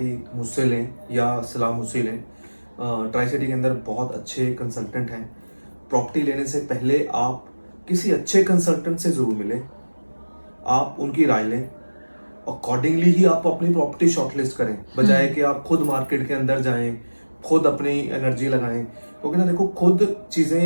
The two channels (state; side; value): inverted; both; correlation -1.00